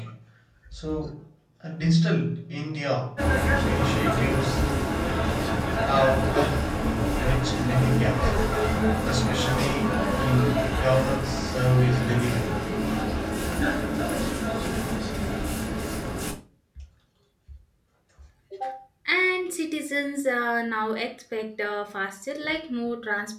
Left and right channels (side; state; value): both; identical; correlation 1.00